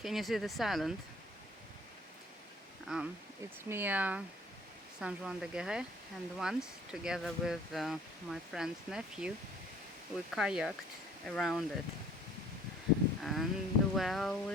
you see this island? It's near Saint-Jacques-de-Compostelle, and once, together with my friend's nephew, we kayaked around it. And well,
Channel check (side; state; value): both; normal; correlation 0.54